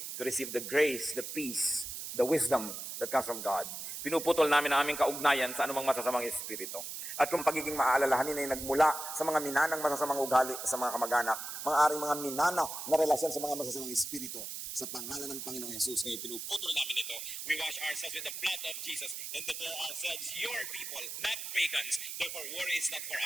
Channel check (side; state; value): right; noise; hiss, 7 dB below the sound